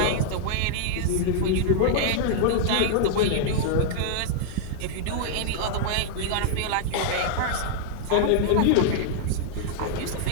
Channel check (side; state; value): both; different; correlation -0.01